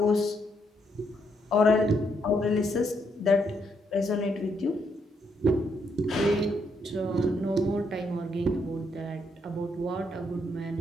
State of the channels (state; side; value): normal; both; correlation 0.75